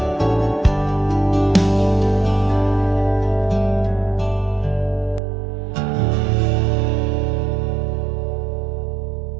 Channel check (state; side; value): drops out; left; at 5.2 s